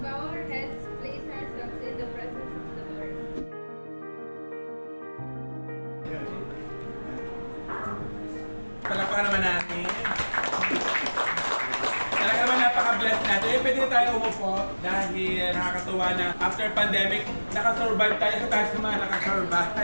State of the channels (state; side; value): inverted; both; correlation -1.00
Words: Bow our heads, place ourselves in the presence of the Lord. Palakpakan naman natin. Talaga naman napaka-blessed natin. Pwede na tayo umupo dahil nakakatuwa na after pandemic, nakasurvive tayo sa tayo naman,